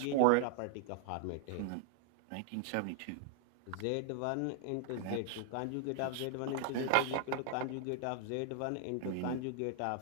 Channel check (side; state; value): both; different; correlation -0.01